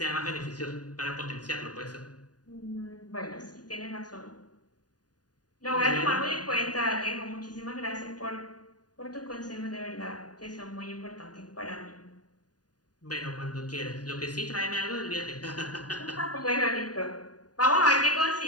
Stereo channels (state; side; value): late; right; 0.69 ms